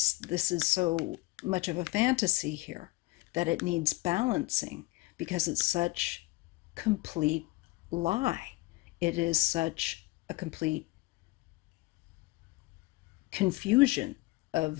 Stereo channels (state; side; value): quieter; right; 21.0 dB